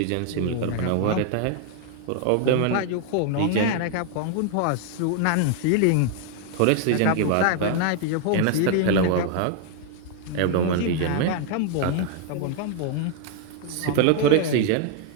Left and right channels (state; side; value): different; both; correlation 0.00